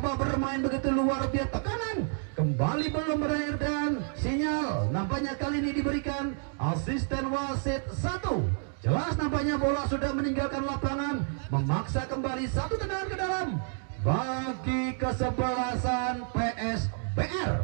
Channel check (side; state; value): left; silent; 58 dB below the other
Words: bermain begitu luar biasa, tekanan kembali belum berakhir dan sinyal nampaknya kali ini diberikan asisten wasit 1. Jelas nampaknya bola sudah meninggalkan lapangan, memaksa kembali satu tendangan ke dalam bagi kesebelasan PSBR.